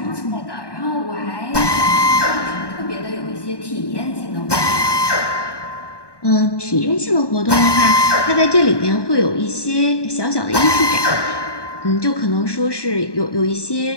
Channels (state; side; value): late; right; 1.2 ms